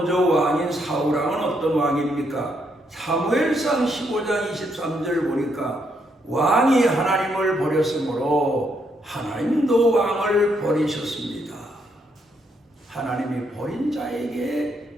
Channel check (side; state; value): both; normal; correlation 0.75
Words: 왕인 사울왕은 어떤 왕입니까? 사무엘상 15장 23절 보니까 왕이 하나님을 버렸으므로 하나님도 왕을 버리셨습니다. 하나님이 버린